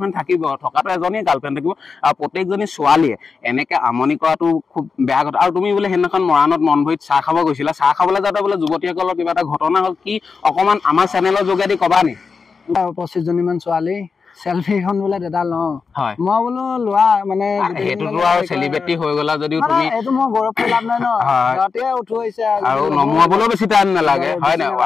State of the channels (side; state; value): right; quieter; 5.1 dB